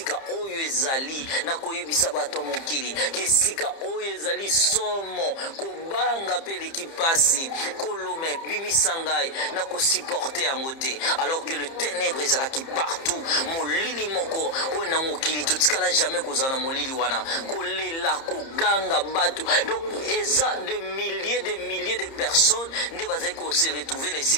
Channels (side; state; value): right; late; 30 ms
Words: oyo ezali na koyebisa bato mokili, que sika oyo ezali somo kobanga pe l'équipasi kolome bimisangai na ko supporter yango te, alors que le ténèbre ezalaki partout. Molili moko oyo na mokili totikala jamais kozana molili wana kolela koganga bato. Donc eza de milliers de personnes nde bazali ko se retrouver na